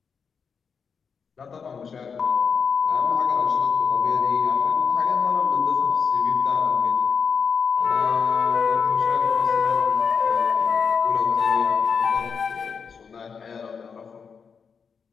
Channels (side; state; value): right; quieter; 6.0 dB